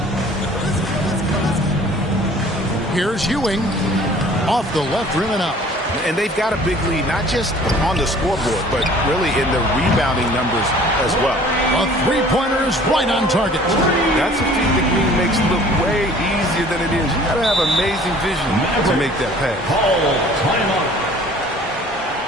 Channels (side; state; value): both; normal; correlation 0.51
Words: Here's Ewing. Off the left rim and out. And they've got a big lead, not just on the scoreboard, but really in the rebounding numbers as well. A three-pointer is right on target. That's a feat that Green makes look way easier than it is. You got to have amazing vision to make that pass.